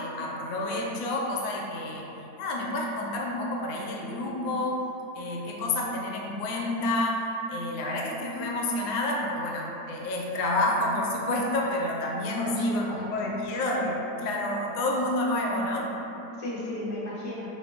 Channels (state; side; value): late; right; 9.6 ms